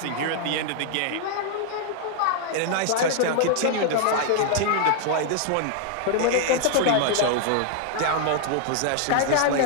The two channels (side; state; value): both; different; correlation 0.00